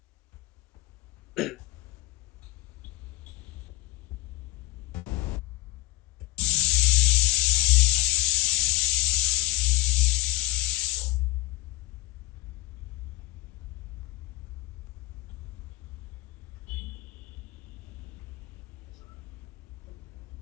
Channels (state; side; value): quieter; right; 19.4 dB